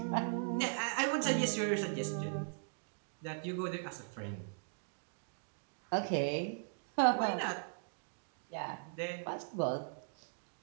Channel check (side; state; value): left; silent; digital silence